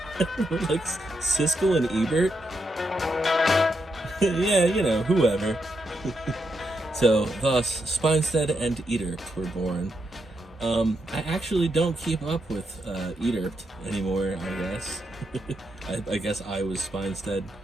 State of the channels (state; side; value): normal; both; correlation 0.83